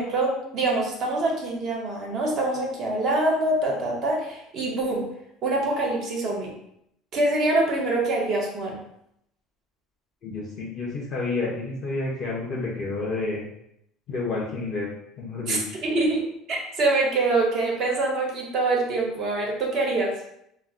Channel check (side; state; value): both; normal; correlation 0.44